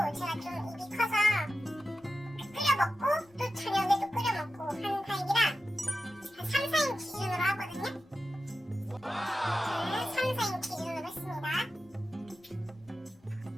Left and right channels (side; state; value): both; normal; correlation 0.92